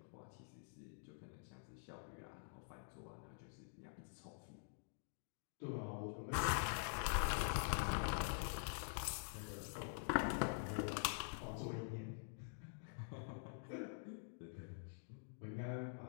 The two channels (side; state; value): right; silent; digital silence